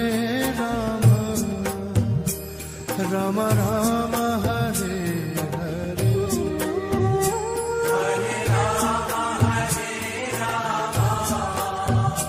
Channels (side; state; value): both; identical; correlation 1.00